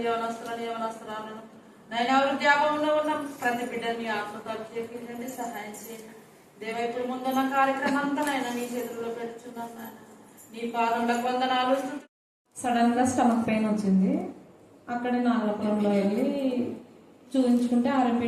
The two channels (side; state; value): both; identical; correlation 1.00